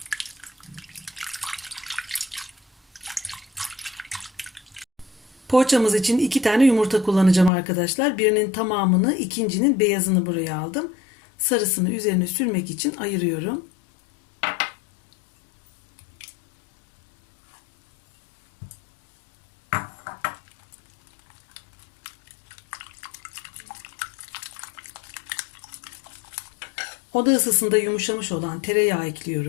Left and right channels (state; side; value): drops out; right; at 7.5 s